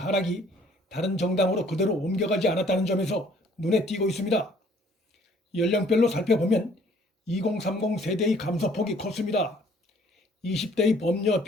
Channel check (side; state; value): both; normal; correlation 0.59